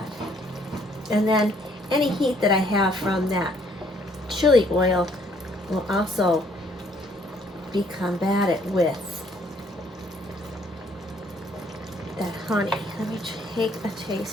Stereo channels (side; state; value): both; normal; correlation 0.64